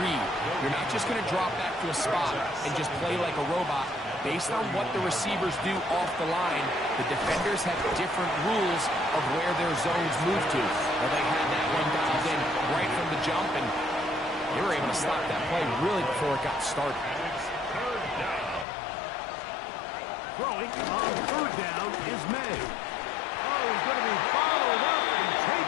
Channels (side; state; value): right; drops out; at 18.7 s